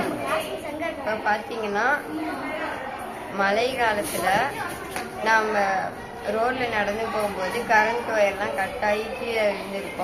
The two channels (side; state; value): both; identical; correlation 1.00